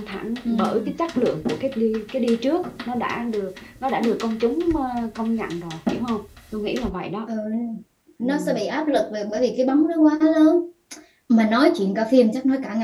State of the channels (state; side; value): identical; both; correlation 1.00